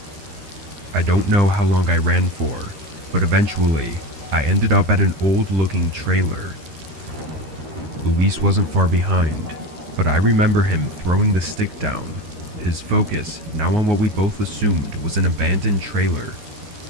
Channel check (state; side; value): late; left; 13 ms